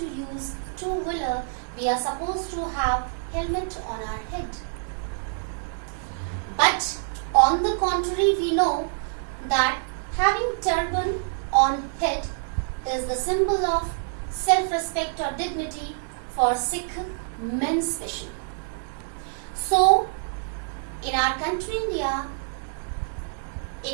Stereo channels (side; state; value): left; silent; digital silence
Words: use two-wheeler, we are supposed to have helmet on our head. But on the contrary, we know that having turban on head is the symbol of self-respect or dignity for Sikh men especially. So, in our country India,